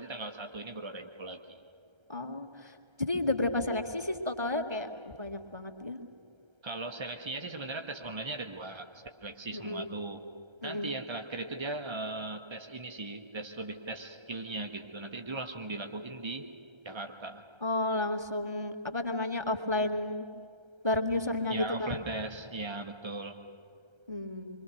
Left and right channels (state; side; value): late; left; 1.3 ms